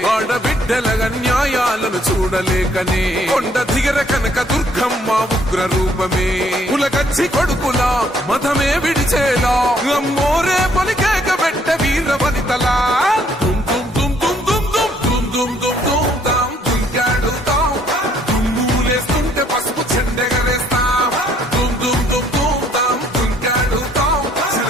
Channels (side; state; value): both; normal; correlation 0.65